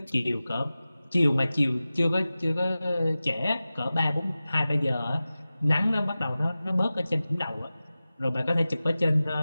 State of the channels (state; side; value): inverted; both; correlation -0.96